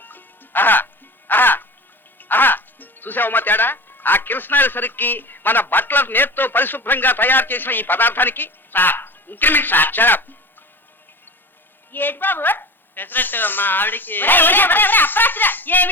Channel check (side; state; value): both; normal; correlation 0.33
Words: చూసావమ్మా తేడా? ఆ కిరసనాయిల సరికి మన బట్టల నేర్తో పరిశుభ్రంగా తయారు చేసిన ఈ పదార్థానికి సార్ ఇంక్రిమెంట్ సార్. ఏంటి బాబు? పెసరట్టు మా ఆవిడికి.